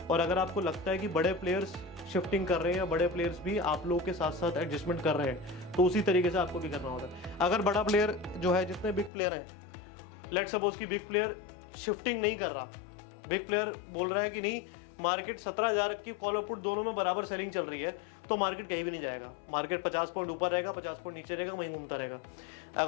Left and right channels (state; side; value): drops out; right; at 9.1 s